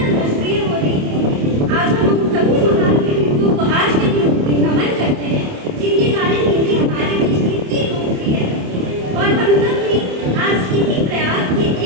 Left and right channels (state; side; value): late; left; 27 ms